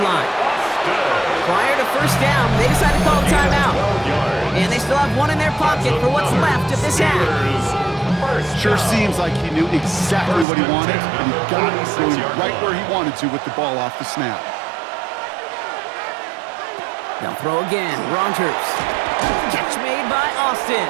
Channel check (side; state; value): left; drops out; at 10.5 s